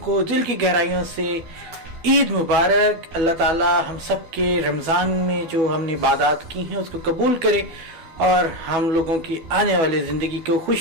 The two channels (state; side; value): late; left; 12 ms